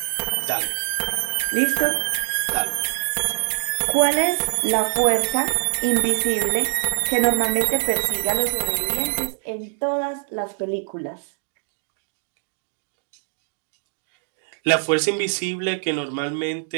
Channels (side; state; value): left; silent; digital silence